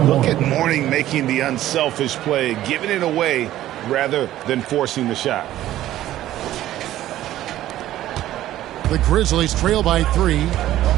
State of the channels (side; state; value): left; quieter; 13.8 dB